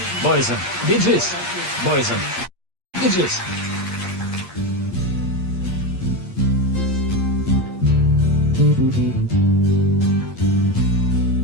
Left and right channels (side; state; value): left; late; 8.5 ms